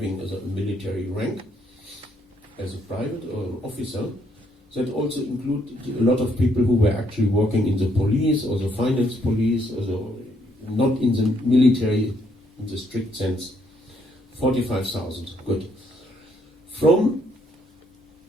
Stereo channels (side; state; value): both; normal; correlation 0.71